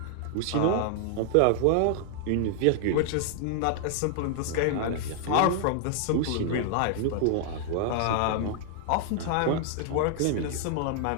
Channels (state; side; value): different; both; correlation 0.00